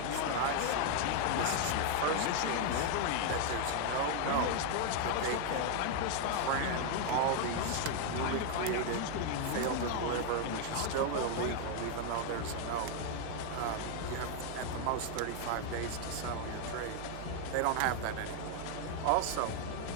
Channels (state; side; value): different; both; correlation 0.00